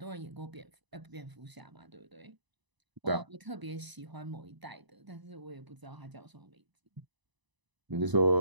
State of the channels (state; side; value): late; left; 1.0 ms